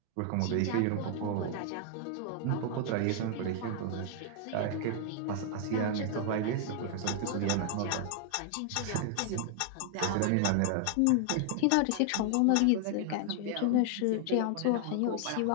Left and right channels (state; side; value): different; both; correlation 0.00